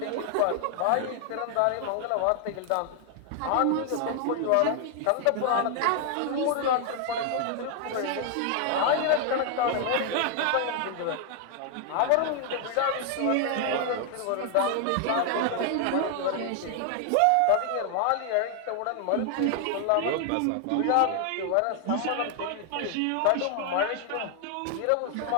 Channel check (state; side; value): different; both; correlation 0.00